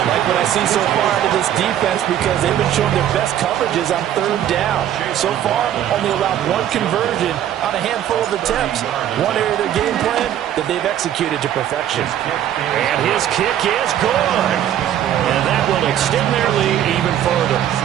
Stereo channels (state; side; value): quieter; left; 11.0 dB